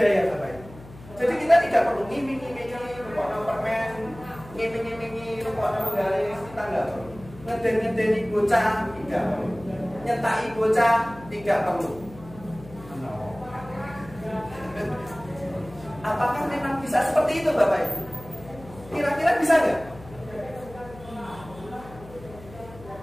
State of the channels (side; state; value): left; noise; hum, 18 dB below the sound